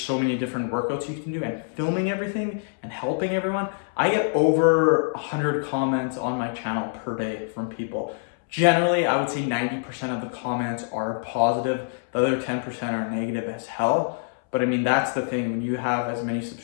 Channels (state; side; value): silent; right; 62 dB below the other